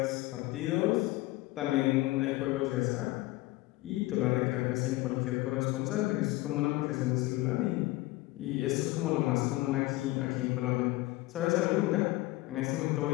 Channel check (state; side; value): quieter; right; 19.4 dB